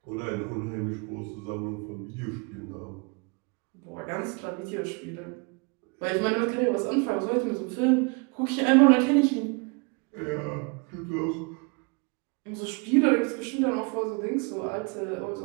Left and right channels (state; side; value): quieter; left; 31.7 dB